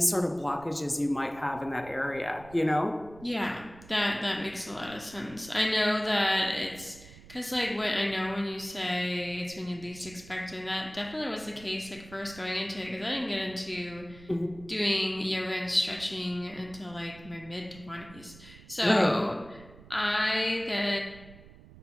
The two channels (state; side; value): noise; right; rumble, 20 dB below the sound